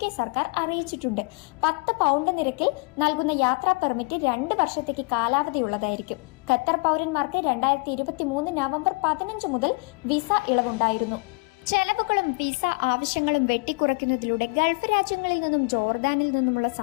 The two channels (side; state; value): right; quieter; 30.6 dB